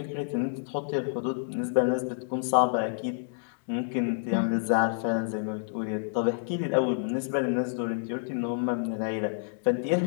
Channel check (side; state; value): right; silent; digital silence